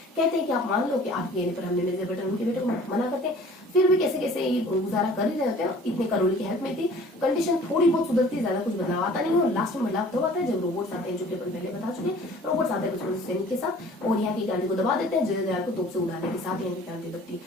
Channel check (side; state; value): both; normal; correlation 0.49